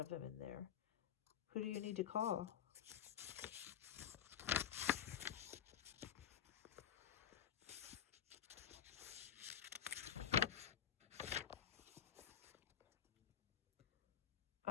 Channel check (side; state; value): right; quieter; 9.6 dB